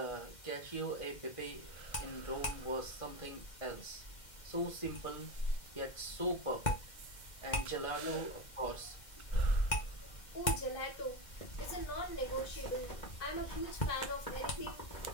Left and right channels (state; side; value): late; right; 2.1 ms